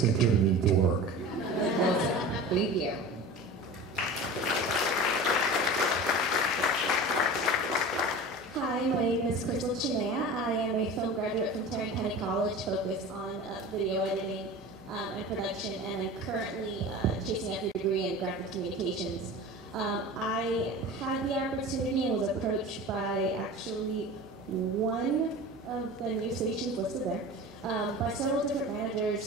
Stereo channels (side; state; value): both; normal; correlation 0.35